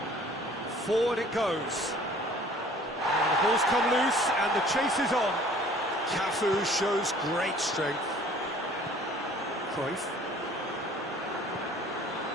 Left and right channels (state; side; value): normal; both; correlation 0.52